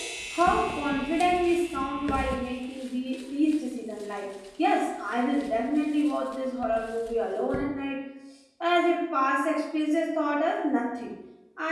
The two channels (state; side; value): identical; both; correlation 1.00